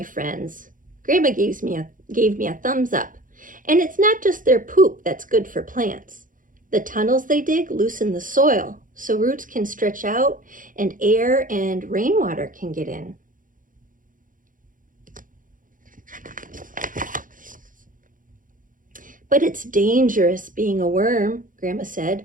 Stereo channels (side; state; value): left; late; 0.39 ms